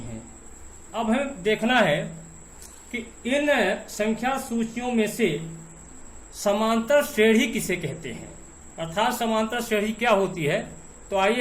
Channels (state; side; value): identical; both; correlation 1.00